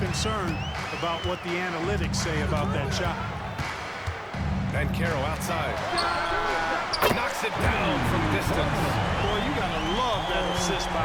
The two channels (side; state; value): both; identical; correlation 1.00